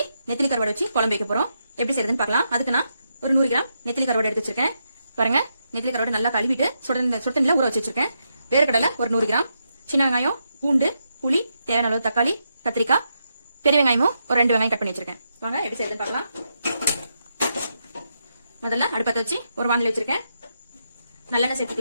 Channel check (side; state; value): both; inverted; correlation -0.82